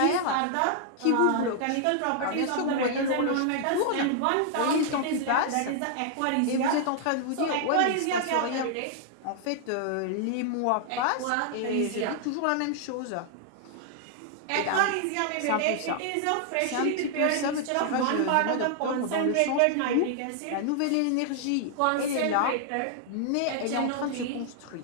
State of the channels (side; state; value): both; different; correlation 0.00